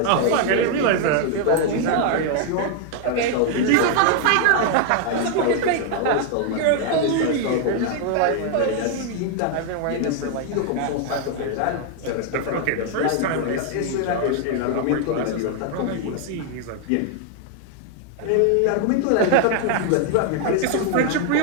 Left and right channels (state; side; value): different; both; correlation 0.00